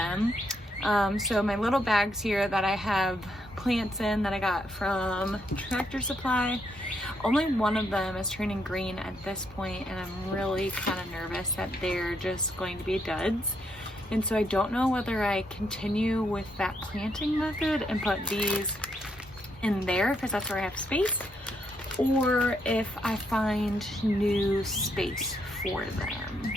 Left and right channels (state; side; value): normal; both; correlation 0.77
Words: So my little bags here that I have plants in that I got from Tractor Supply, only one of them is turning green at this point, and I'm really kind of nervous that they're just going to be duds. And so I don't know whether I continue with that planting method and put these in there because that's where I have space, or if I find new space for them.